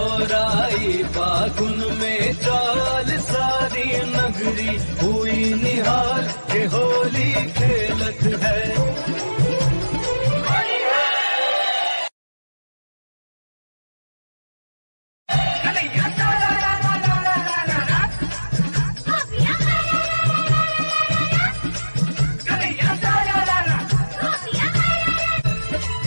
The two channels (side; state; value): both; inverted; correlation -1.00